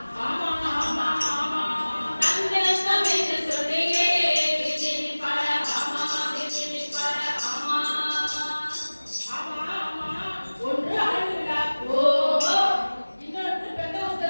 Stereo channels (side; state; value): both; inverted; correlation -1.00